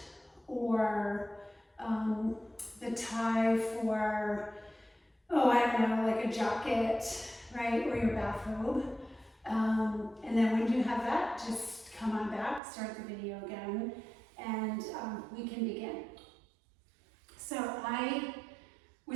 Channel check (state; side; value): drops out; left; at 12.6 s